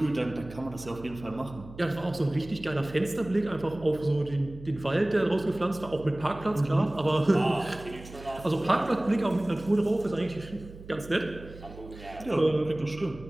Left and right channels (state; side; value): noise; right; hum, 16 dB below the sound